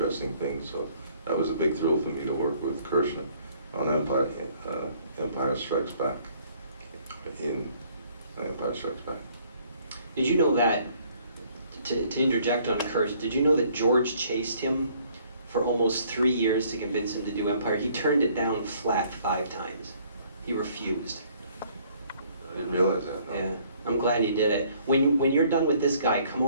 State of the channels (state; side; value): inverted; both; correlation -0.61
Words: things. So that was a big thrill for me to work with Kershner on Empire Strikes Back. In Empire Strikes Back. Did you know that, to interject on Kirsch, did you know that George chased him for almost 3 years to convince him to do Empire? He turned it down flat 5 times. He refused. I didn't realize that. No. Yeah, I'm glad he did it. When you're done with this guy, come